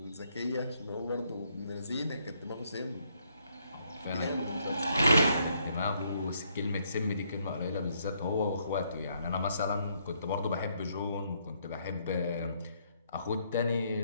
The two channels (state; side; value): inverted; both; correlation -0.72